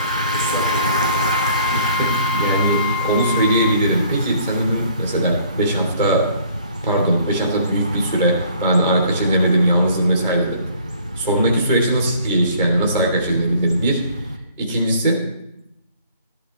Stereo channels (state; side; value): inverted; both; correlation -0.57